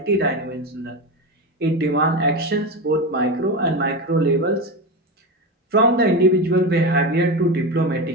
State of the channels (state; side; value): normal; both; correlation 0.18